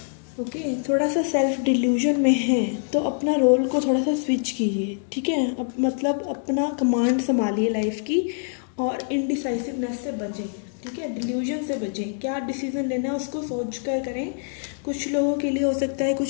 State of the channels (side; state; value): right; silent; digital silence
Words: ओके, थोड़ा सा सेल्फ डिल्यूजन में है तो अपना रोल को थोड़ा सा स्विच कीजिए, ठीक है। अब मतलब अपना कमांड संभालिए लाइफ की, और इनडिसाइसिवनेस से बचें, ठीक है। डिल्यूजन से बचें, क्या डिसीजन लेना है उसको सोच कर करें। कुछ लोगों के लिए हो सकता है